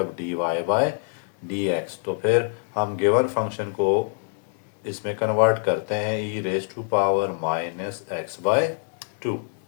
d Y by D x. तो फिर हम गिवन फंक्शन को इसमें कन्वर्ट करते हैं e raise to power minus x by 2।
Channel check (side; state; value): right; silent; digital silence